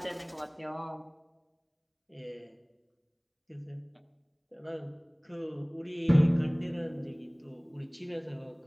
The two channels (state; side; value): identical; both; correlation 1.00